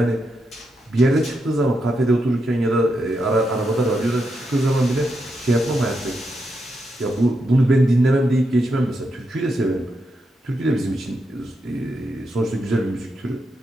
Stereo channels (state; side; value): normal; both; correlation 0.84